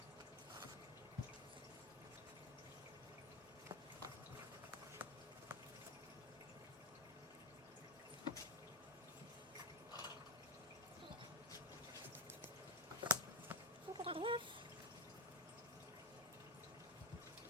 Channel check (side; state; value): both; normal; correlation 0.13